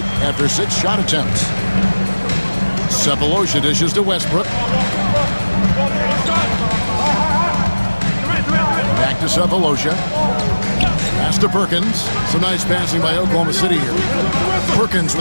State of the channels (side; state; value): both; inverted; correlation -1.00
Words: after 6 shot attempts. Cephalosha dishes to Westbrook. Back to Cephalosha. Pass to Perkins. Some nice passing by Oklahoma City here. Perkins